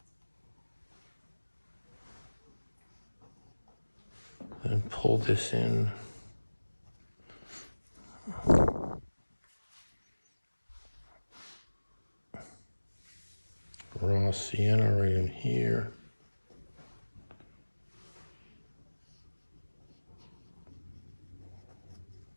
and pull this in. Raw sienna right in here.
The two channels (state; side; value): inverted; both; correlation -1.00